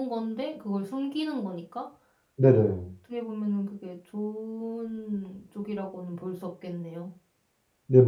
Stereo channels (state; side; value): identical; both; correlation 1.00